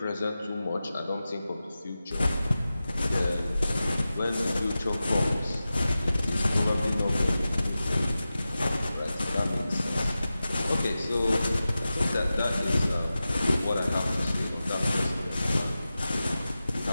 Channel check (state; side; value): inverted; both; correlation -0.94